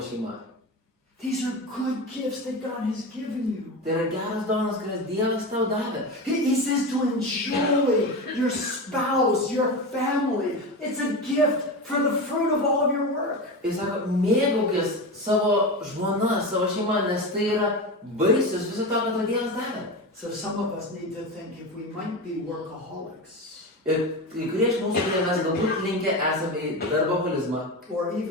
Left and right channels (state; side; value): normal; both; correlation 0.23